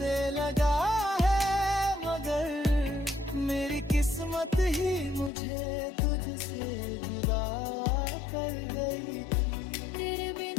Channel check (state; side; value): drops out; right; at 5.3 s